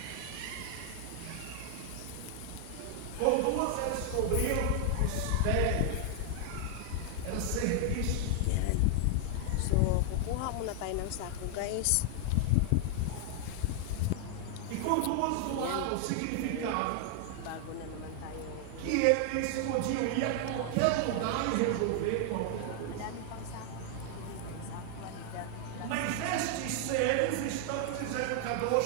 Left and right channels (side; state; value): both; different; correlation 0.00